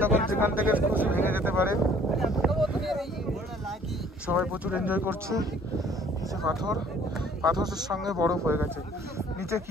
তখন যেখান থেকে খুশি ভেঙে যেতে পারে। সবাই প্রচুর এনজয় করছে। নিচে পাথরের সঙ্গে বরফ হয়ে গেছে, নিচে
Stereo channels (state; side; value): normal; both; correlation 0.56